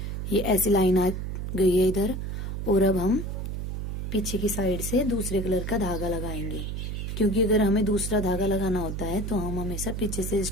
ये ऐसी लाइन आ गई है इधर, और अब हम पीछे की साइड से दूसरे कलर का धागा लगाएंगे, क्योंकि अगर हमें दूसरा धागा लगाना होता है तो हम हमेशा पीछे से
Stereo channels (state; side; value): noise; right; hum, 4 dB below the sound